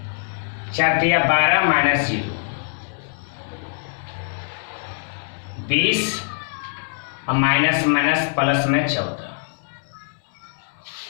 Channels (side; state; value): right; silent; 63 dB below the other